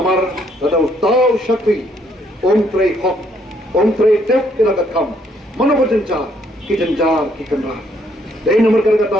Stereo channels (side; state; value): both; normal; correlation 0.69